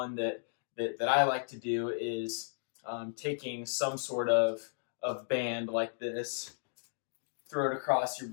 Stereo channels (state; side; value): silent; right; digital silence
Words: that I like to do is taking some sort of band like this, throw it across your